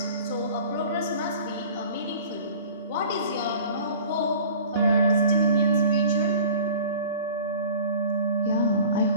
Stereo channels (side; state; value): both; inverted; correlation -0.44